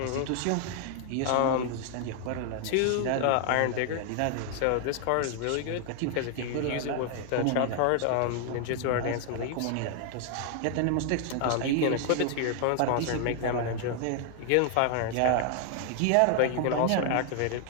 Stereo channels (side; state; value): both; different; correlation 0.00